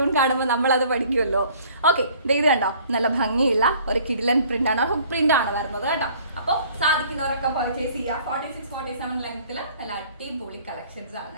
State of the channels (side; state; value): both; inverted; correlation -0.54